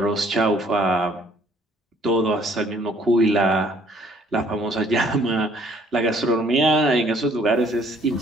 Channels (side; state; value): both; normal; correlation 0.60